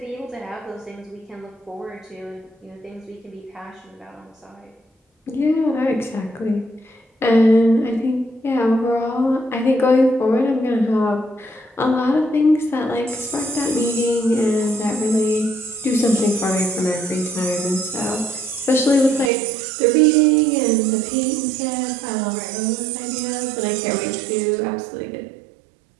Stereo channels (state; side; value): drops out; left; at 19.3 s